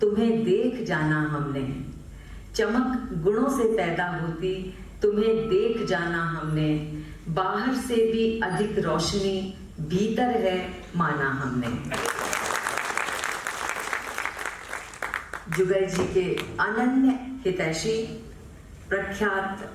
देख जाना हमने, चमक गुणों से पैदा होती, तुम्हें देख जाना हमने, बाहर से भी अधिक रोशनी भीतर है माना हमने। जुगल जी के अनन्य हितैषी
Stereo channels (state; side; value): identical; both; correlation 1.00